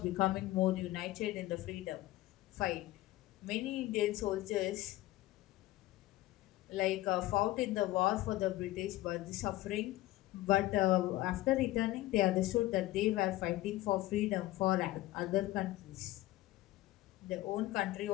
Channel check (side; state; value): right; quieter; 16.8 dB